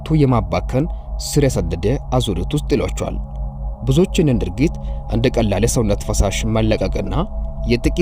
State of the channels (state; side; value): identical; both; correlation 1.00